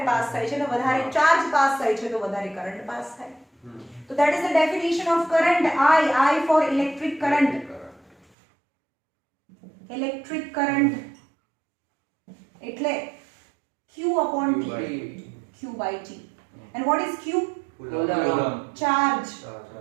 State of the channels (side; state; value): left; drops out; at 8.2 s